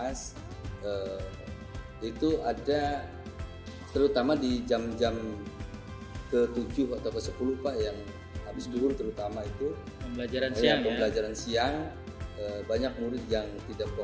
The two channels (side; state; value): both; identical; correlation 1.00